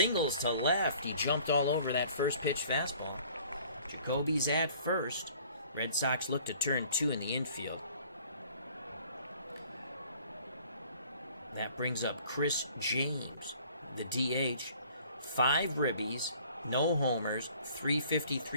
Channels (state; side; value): inverted; both; correlation -0.53